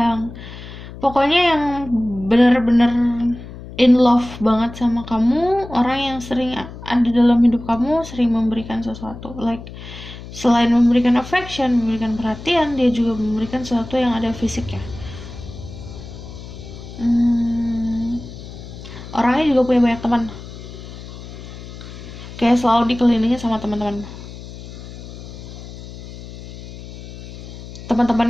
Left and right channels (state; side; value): noise; left; hum, 13 dB below the sound